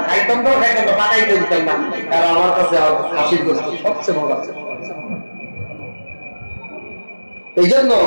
খাইতাম তো খাইতাম না, পাকাইতে দিতাম না। আর আমার কাছে খাসির গোস্ত সবচেয়ে মজা। এই জন্য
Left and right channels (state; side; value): inverted; both; correlation -1.00